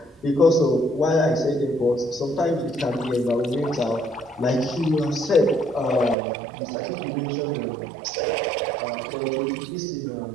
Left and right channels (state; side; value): drops out; left; at 6.2 s